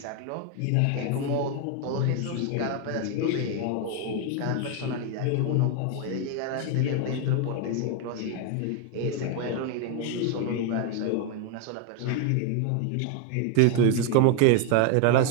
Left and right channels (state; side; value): different; both; correlation 0.01